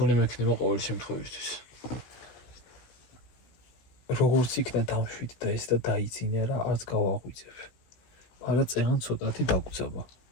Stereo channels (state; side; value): late; right; 16 ms